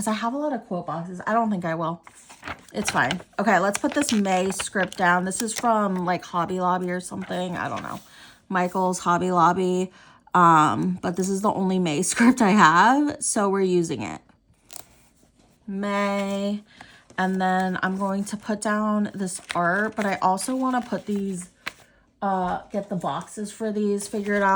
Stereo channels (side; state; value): both; identical; correlation 1.00